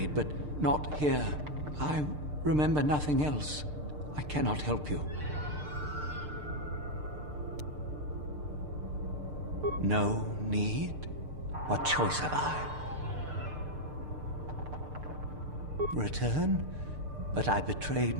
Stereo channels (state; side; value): late; left; 6.7 ms